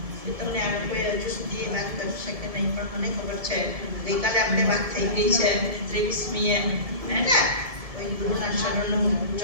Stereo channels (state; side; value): late; left; 1.7 ms